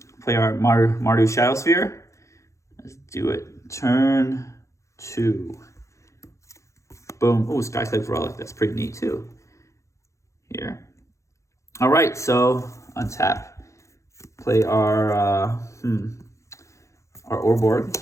Play our Mardu Shadow Sphere. Let's do it. Turn 2. Boom. Oh, Skyclave Relic. That's pretty neat too. Here. All right. So untap. Play our Urborg.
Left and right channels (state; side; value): late; right; 0.15 ms